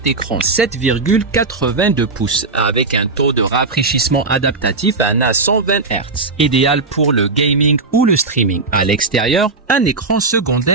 écran 7,82 pouces avec un taux de rafraîchissement adaptatif à 120 Hz, idéal pour le gaming ou le streaming. À l'extérieur, un écran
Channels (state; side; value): quieter; left; 3.8 dB